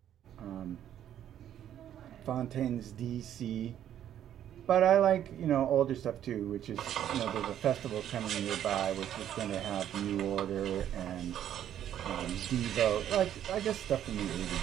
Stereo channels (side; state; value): left; quieter; 10.7 dB